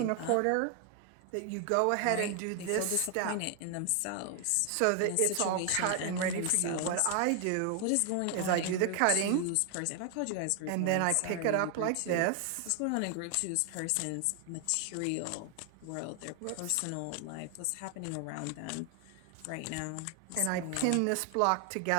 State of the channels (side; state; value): both; different; correlation 0.00